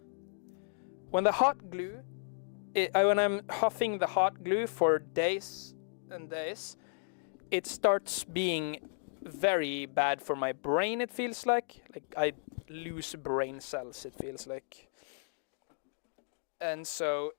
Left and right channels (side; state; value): right; silent; digital silence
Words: When the hot glue, when I'm huffing the hot glue for days and days, it starts being very bad for my brain, it feels like. Like I lose brain cells, it feels like. And so